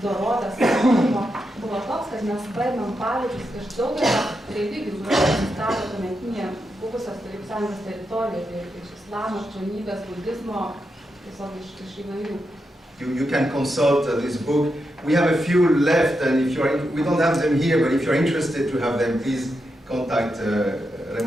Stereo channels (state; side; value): normal; both; correlation 0.85